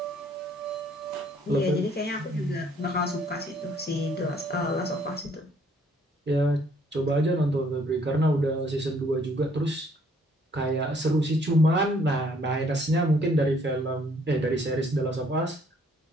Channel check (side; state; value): both; normal; correlation 0.63